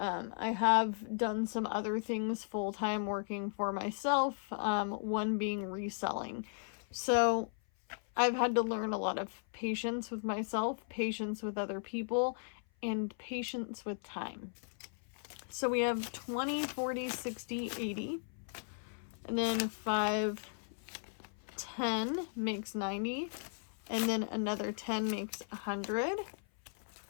have done some other things full-time working for myself, one being reselling. So I've had to learn a lot of patience with myself, patience with other people, and patience with time. So we have 20, 40, 60, 80. And then 5, 10 makes 90. And then another 10 makes 100.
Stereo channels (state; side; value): silent; right; 53 dB below the other